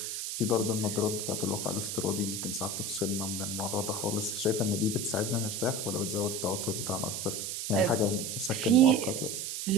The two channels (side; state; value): right; noise; hiss, 4 dB below the sound